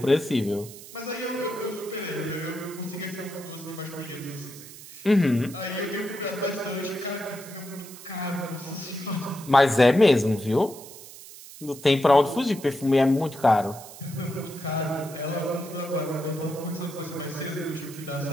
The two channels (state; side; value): noise; right; hiss, 16 dB below the sound